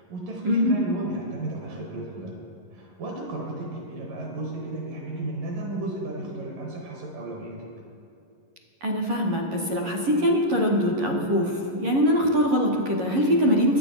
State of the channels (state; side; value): late; left; 11 ms